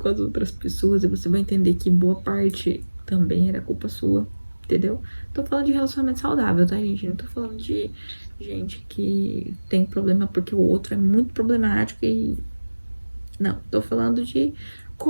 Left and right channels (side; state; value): both; inverted; correlation -1.00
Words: as outras pessoas e você vai entender que boa parte também era culpa sua, entendeu? Tô falando de relacionamento saudável, tá, gente? Não tô falando de gente que tem problema porque o outro é muito problemático e... Não, tô falando de